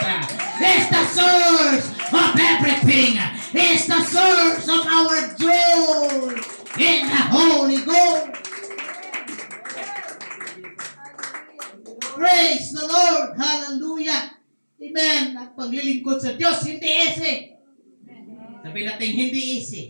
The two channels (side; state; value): both; inverted; correlation -1.00